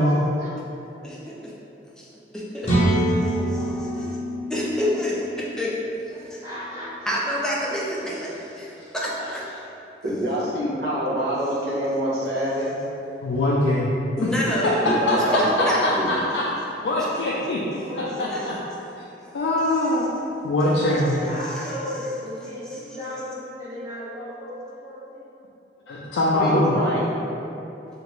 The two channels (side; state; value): both; normal; correlation 0.35